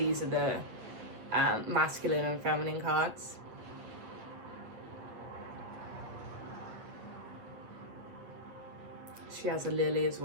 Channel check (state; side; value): late; left; 8.6 ms